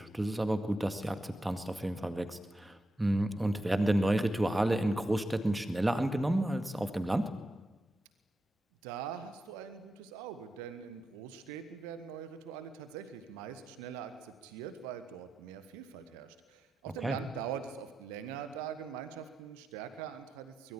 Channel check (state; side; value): normal; both; correlation 0.89